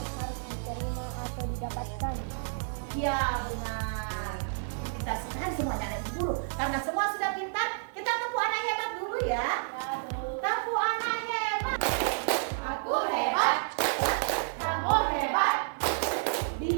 harus diterima atau didapatkan. Iya, benar. Kita sekarang semuanya anak ibu guru. Karena semua sudah pintar, kita tepuk anak hebat dulu ya. Tepuk anak hebat. Aku hebat. Kamu hebat.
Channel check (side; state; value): left; silent; 58 dB below the other